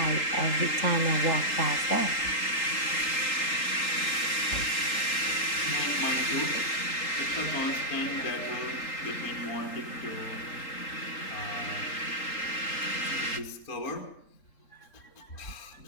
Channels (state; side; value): late; right; 3.8 ms